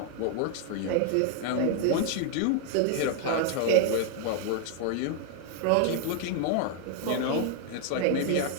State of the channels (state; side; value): different; both; correlation 0.00